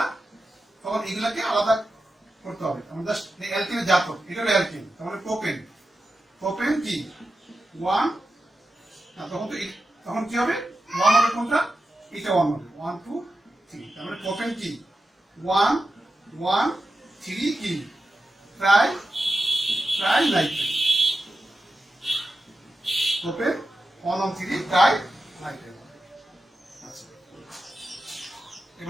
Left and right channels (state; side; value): normal; both; correlation 0.91